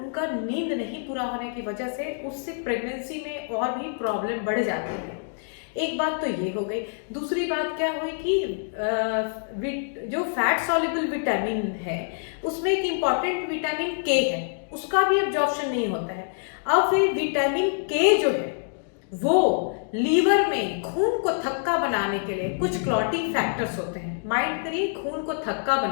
नींद नहीं पूरा होने की वजह से, उससे प्रेगनेंसी में और भी प्रॉब्लम बढ़ जाती है। एक बात तो ये हो गई। दूसरी बात क्या हुई कि जो फैट सॉल्युबल विटामिन है उसमें एक इम्पॉर्टेंट विटामिन के है, उसका भी एब्जॉर्प्शन नहीं होता है। अब फिर विटामिन के जो है वो लीवर में खून को थक्का बनाने के लिए कुछ क्लॉटिंग फैक्टर्स होते हैं। माइंड करिए, खून को थक्का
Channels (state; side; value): silent; right; digital silence